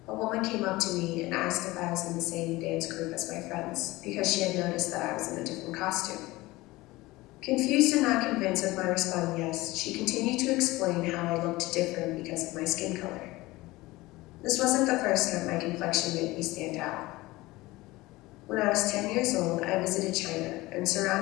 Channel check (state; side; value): quieter; right; 19.9 dB